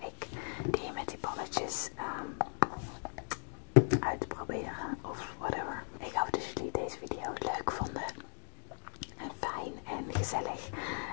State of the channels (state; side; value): silent; right; 53 dB below the other